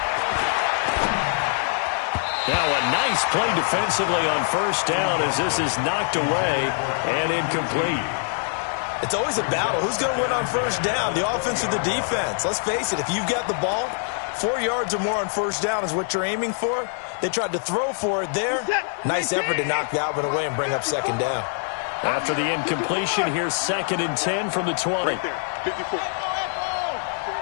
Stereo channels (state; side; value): silent; right; 63 dB below the other